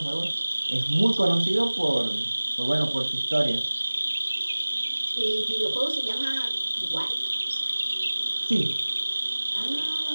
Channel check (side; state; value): both; inverted; correlation -1.00